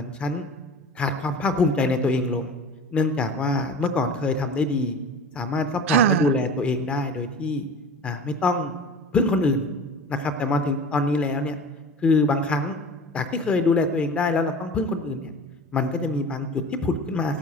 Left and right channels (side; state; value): both; normal; correlation 0.37